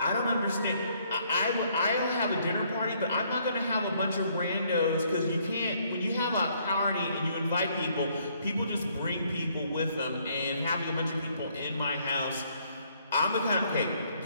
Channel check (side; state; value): both; inverted; correlation -0.67